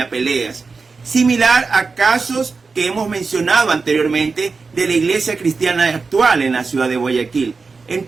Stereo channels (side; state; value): left; quieter; 4.5 dB